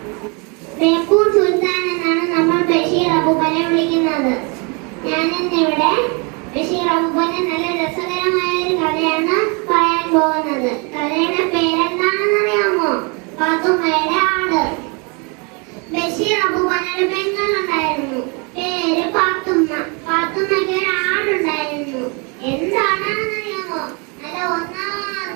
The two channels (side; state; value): left; quieter; 32.5 dB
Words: ബേപ്പൂർ സുൽത്താൻ എന്നാണ് നമ്മൾ ബഷീർ അബൂബക്കറിനെ വിളിക്കുന്നത്. ഞാനിന്നിവിടെ ബഷീർ അബൂബക്കറിന്റെ നല്ല രസകരമായ ഒരു കഥയാണ് പറയാൻ പോകുന്നത്. കഥയുടെ പേരെന്താണെന്ന് അറിയാമോ? പാത്തുമ്മയുടെ ആട്. ബഷീർ അബൂബക്കറിന്റെ പെങ്ങളുണ്ടായിരുന്നു, പേര് പാത്തുമ്മ. പാത്തുമ്മയ്ക്ക് ഒരു ആടുണ്ടായിരുന്നു. എന്താണെന്ന് അറിയാമോ? നല്ല ഒന്നാം